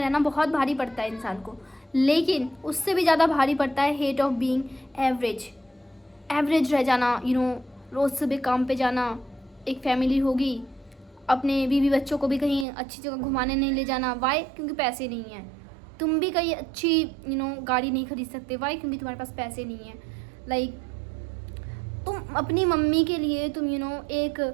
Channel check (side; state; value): left; drops out; at 12.7 s